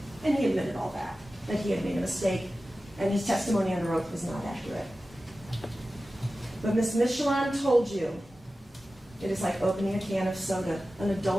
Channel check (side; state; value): both; normal; correlation 0.95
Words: And he admitted all that he had made a mistake, and his testimony under oath was not accurate. But Ms. Michelon told you it is like opening a can of soda. An